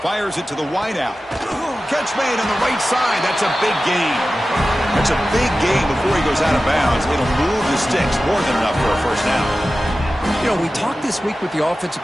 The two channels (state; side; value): normal; both; correlation 0.95